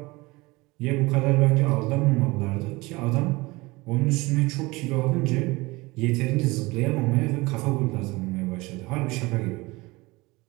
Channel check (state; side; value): quieter; left; 22.6 dB